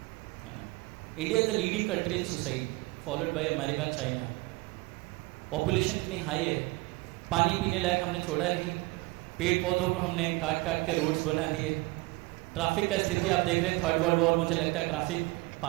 है ना। India is the leading country in suicide, followed by America, China. Population इतनी हाई है, पानी पीने लायक हमने छोड़ा नहीं, पेड़ पौधों को हमने काट काट के रोड्स बना दिए। ट्रैफिक का स्थिति आप देख रहे हैं, 3rd वर्ल्ड वॉर मुझे लगता है ट्रैफिक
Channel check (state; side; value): quieter; left; 23.2 dB